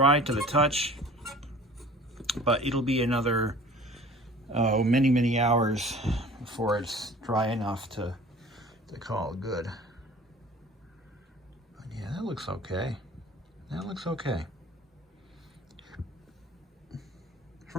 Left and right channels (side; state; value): both; normal; correlation 0.46